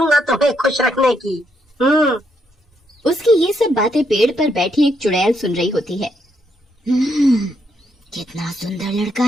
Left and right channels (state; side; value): normal; both; correlation 0.76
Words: तुम्हें खुश रखने की। उसकी ये सब बातें पेड़ पर बैठी एक चुड़ैल सुन रही होती है। कितना सुंदर लड़का